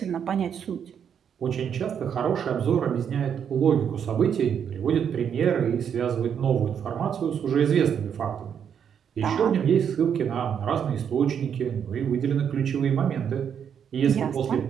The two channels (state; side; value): quieter; left; 8.0 dB